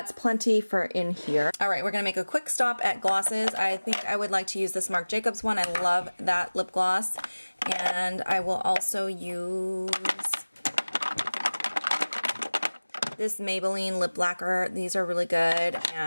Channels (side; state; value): both; inverted; correlation -1.00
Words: plenty for in here. All right, we're gonna make a quick stop at glosses. I think I would like to use this Marc Jacobs one. I love that lip gloss. And I will also use this Maybelline lip lacquer. These are really good.